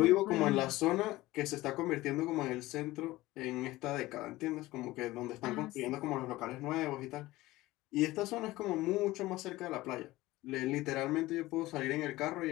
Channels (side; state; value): right; quieter; 18.2 dB